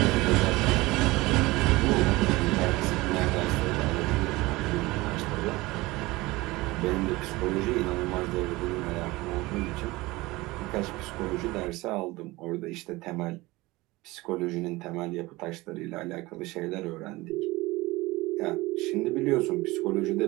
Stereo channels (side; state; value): left; quieter; 20.8 dB